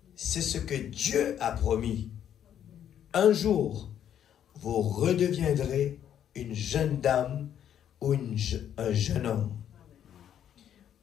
C'est ce que Dieu a promis. Un jour, vous redeviendrez une jeune dame ou un jeune homme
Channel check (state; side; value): quieter; right; 9.8 dB